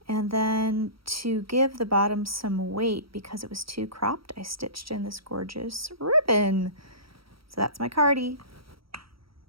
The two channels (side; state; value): left; late; 0.75 ms